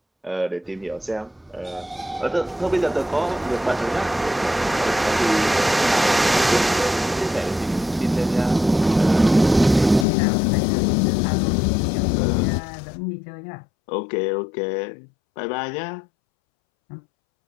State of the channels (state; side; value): drops out; right; at 10.1 s